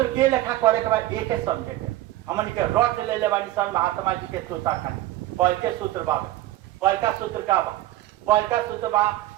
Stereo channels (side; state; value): left; quieter; 15.3 dB